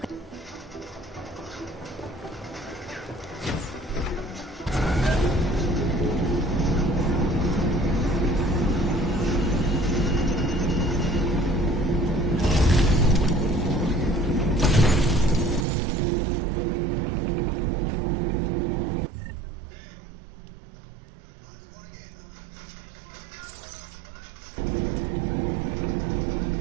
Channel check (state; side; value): drops out; left; at 15.7 s